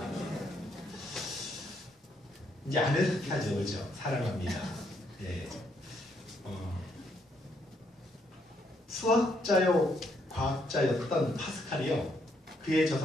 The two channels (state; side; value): normal; both; correlation 0.73